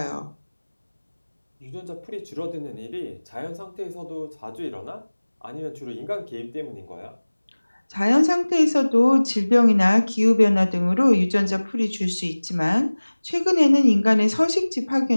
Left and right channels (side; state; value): both; inverted; correlation -1.00